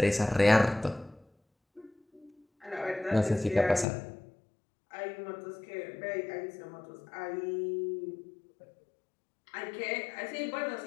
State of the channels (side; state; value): right; drops out; at 3.9 s